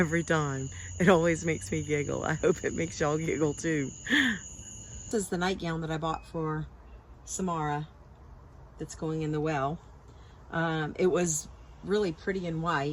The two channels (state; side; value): identical; both; correlation 1.00